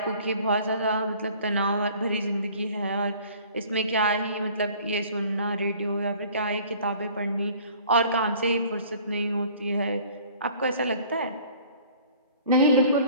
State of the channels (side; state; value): both; inverted; correlation -0.51